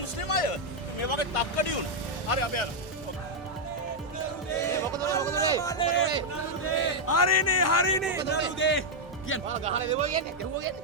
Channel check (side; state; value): both; normal; correlation -0.02